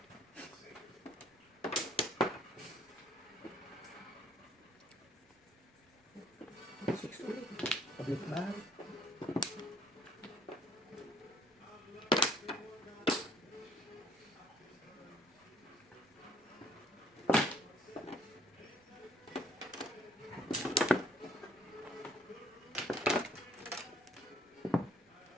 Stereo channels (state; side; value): normal; both; correlation 0.62